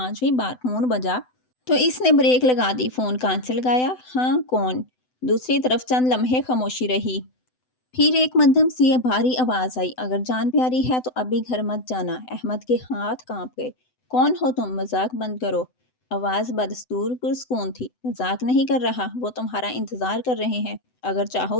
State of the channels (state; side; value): late; right; 7.9 ms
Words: بار فون بجا تو اس نے بریک لگا دی۔ فون کان سے لگایا۔ ہاں کون؟ دوسری طرف چند لمحے خاموشی رہی، پھر ایک مدھم سی بھاری آواز آئی، اگر جان پیاری ہے تو ابھی گھر مت جانا۔ احمد کے ہاتھ کانپ گئے۔ کون ہو تم؟ مذاق بند کرو۔ آواز بدستور پرسکون تھی۔ مذاق نہیں کر رہا، وہ تمہارا انتظار کر رہے ہیں، اگر